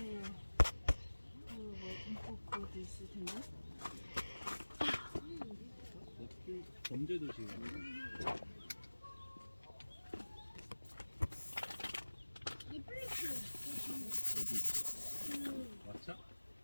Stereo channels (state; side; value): inverted; both; correlation -1.00